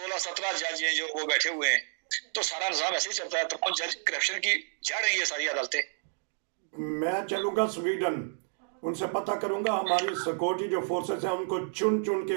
जज हैं जो वो बैठे हुए हैं। तो सारा निजाम ऐसे ही चलता है। तो जज करप्शन की जड़ रही है सारी अदालतें। मैं चलूंगा स्वीडन, उनसे पता करूंगा हमारी सिक्योरिटी जो फोर्सेस हैं उनको चुन चुन के,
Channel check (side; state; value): left; silent; digital silence